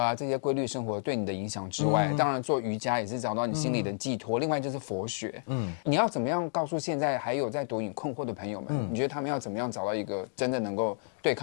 这些规律生活对你的影响之外，当然做瑜伽也是找到你心里的寄托。另外就是佛学，你要怎么样告诉现在还有在毒瘾困惑的朋友们？你觉得他们要怎么样找到一个真的能够对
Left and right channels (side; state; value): right; silent; digital silence